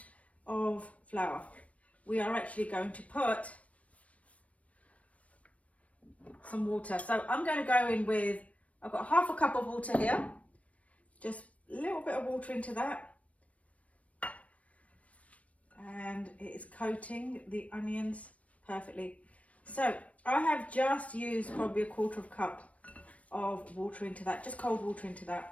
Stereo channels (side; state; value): right; late; 0.066 ms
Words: of flour. We are actually going to put some water. So I'm going to go in with, I've got half a cup of water here. Just a little bit of water into that. And it is coating the onions perfectly. So I have just used probably a quarter of a cup of water into that, just cold water into